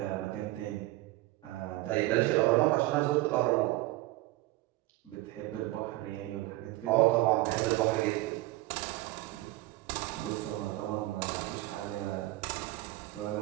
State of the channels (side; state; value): left; quieter; 18.5 dB